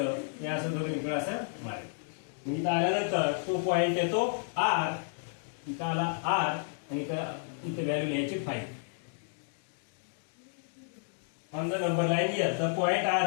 हे असं दोघं इकडे असं मारायचं. इथं आल्यानंतर तो पॉइंट येतो R. इथं आला R आणि इथं व्हॅल्यू लिहायची 5. On the number line here, the point R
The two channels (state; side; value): silent; right; digital silence